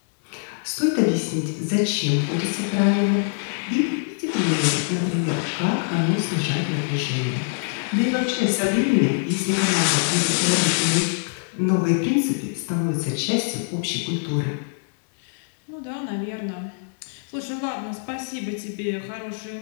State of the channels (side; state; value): right; silent; digital silence